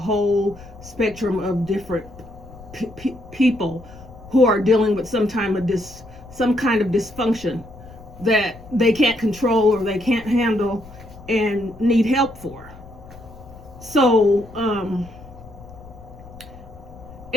spectrum of different people who are dealing with some kind of dysfunction that they can't control or they can't handle and need help for. So,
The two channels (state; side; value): noise; left; rumble, 19 dB below the sound